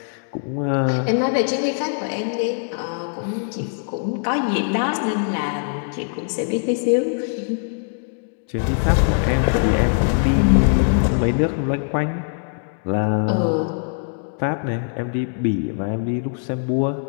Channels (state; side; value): silent; right; 62 dB below the other